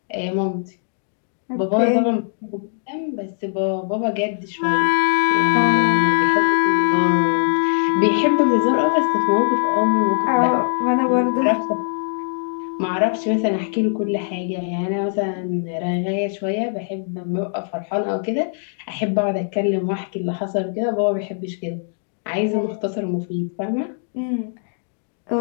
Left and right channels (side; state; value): right; silent; digital silence